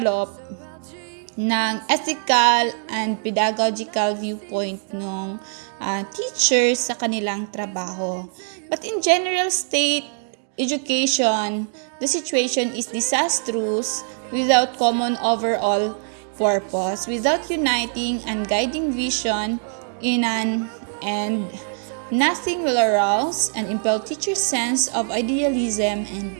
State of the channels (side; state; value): left; silent; 64 dB below the other